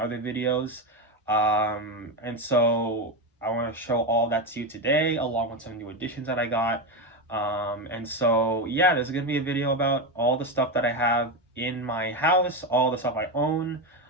videos. And so I want to show all that to you today, along with some new additions that I got. And so, yeah, there's going to be a video about all the stuff that I have in my house, all the stuff I own,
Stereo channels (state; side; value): normal; both; correlation 0.13